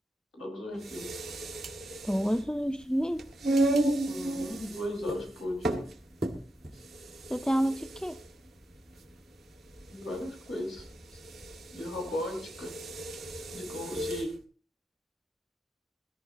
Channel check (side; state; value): both; normal; correlation 0.85